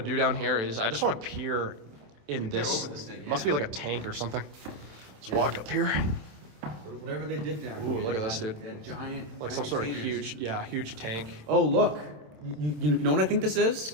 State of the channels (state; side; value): late; left; 27 ms